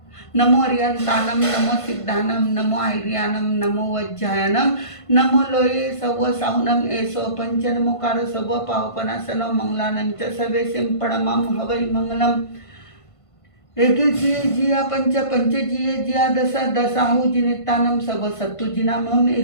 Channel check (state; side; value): late; right; 1.5 ms